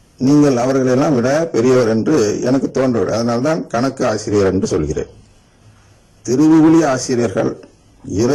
நீங்கள் அவர்களெல்லாம் விட பெரியவர் என்று எனக்கு தோன்றவில்லை. அதனால்தான் கணக்கு ஆசிரியர் என்று சொல்கிறேன். திருவிவிலிய ஆசிரியர்கள்,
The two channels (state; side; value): identical; both; correlation 1.00